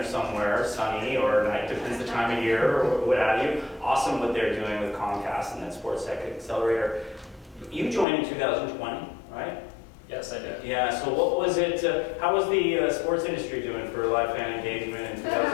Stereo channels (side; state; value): right; drops out; at 8.1 s